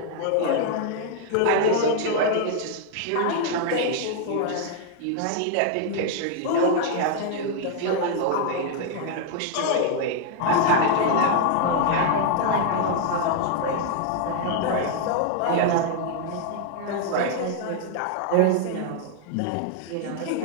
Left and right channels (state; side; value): different; both; correlation 0.00